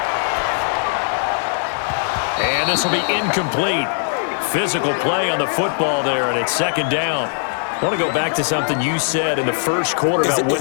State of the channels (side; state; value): right; silent; digital silence